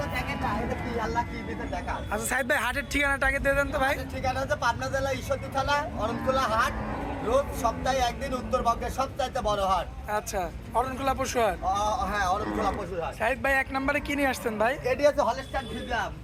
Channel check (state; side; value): identical; both; correlation 1.00